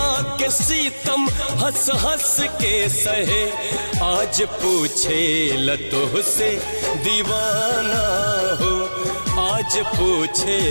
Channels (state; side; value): inverted; both; correlation -1.00